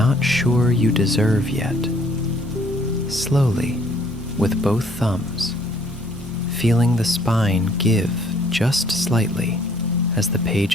sure you deserve yet. Slowly, with both thumbs, feeling the spine give just slightly as the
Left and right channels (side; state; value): both; normal; correlation 0.61